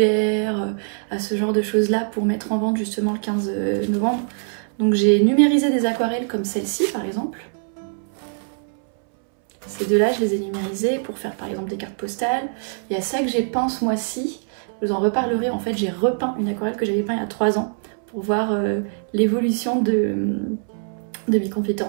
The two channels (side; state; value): left; silent; 62 dB below the other